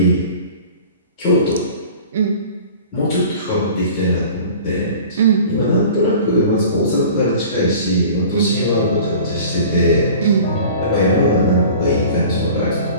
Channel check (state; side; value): inverted; both; correlation -0.43